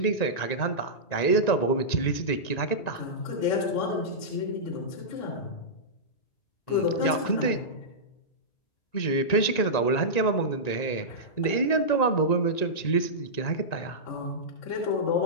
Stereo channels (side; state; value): right; late; 1.9 ms